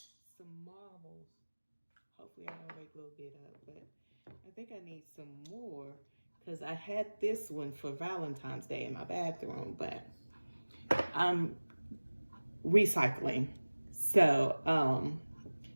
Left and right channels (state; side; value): inverted; both; correlation -1.00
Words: marbles. Hopefully I don't wake a little bit up, but I think I need some more. because I had this one for Valentine's Day in my bathroom, but I'm recycling. So